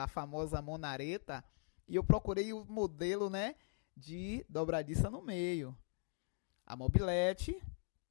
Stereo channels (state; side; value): silent; right; 50 dB below the other